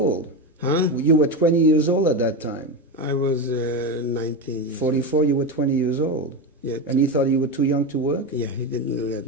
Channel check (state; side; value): normal; both; correlation 0.16